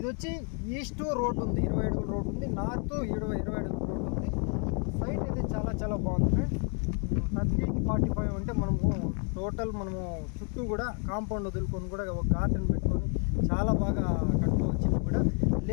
వచ్చి ఈస్ట్ రోడ్ ఉంది, 20 అడుగుల రోడ్ ఉంది, నార్త్ 20 అడుగుల రోడ్ ఉంది. సైట్ అయితే చాలా చాలా బాగుంది. ఫ్రెండ్స్, 30కి 45 అంటే మనము టోటల్ చుట్టూ కూడా కాంపౌండ్ వదులుకొని కూడా ఒక గార్డెన్ పెట్టుకొని చాలా బాగా కట్టుకోవచ్చు. కూడా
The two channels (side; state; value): right; quieter; 39.3 dB